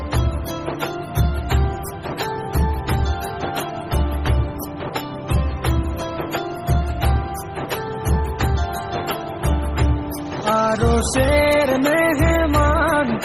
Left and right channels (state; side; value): identical; both; correlation 1.00